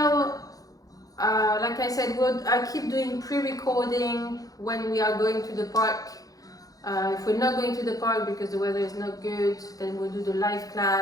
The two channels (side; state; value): right; late; 0.17 ms